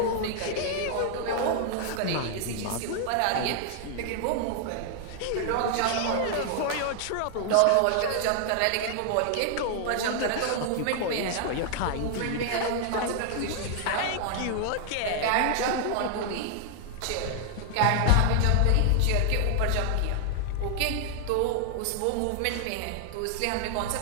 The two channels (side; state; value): both; different; correlation 0.00